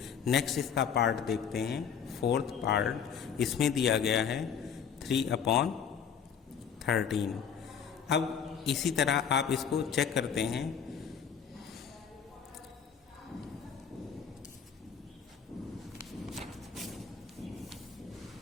नेक्स्ट इसका पार्ट देखते हैं, फोर्थ पार्ट। इसमें दिया गया है 3/13। अब इसी तरह आप इसको चेक करते हैं।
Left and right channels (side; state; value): right; quieter; 7.3 dB